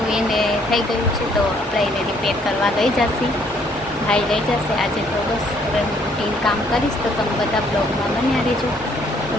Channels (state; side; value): normal; both; correlation 0.65